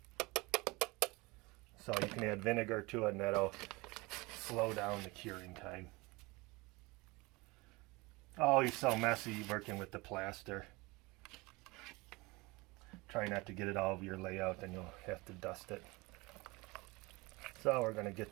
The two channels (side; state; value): left; quieter; 24.1 dB